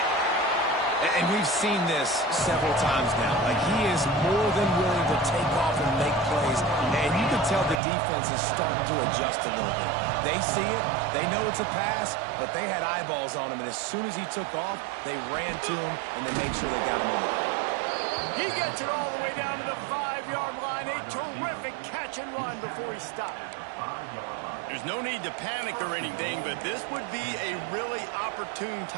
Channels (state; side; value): drops out; left; at 7.8 s